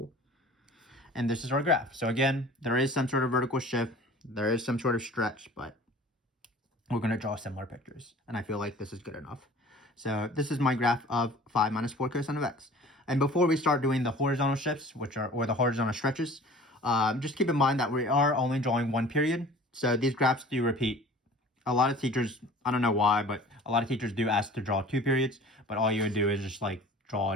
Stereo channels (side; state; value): both; normal; correlation 0.45